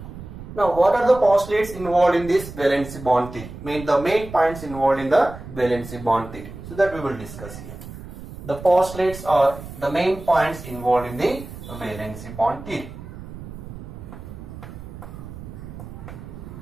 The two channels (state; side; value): noise; right; rumble, 13 dB below the sound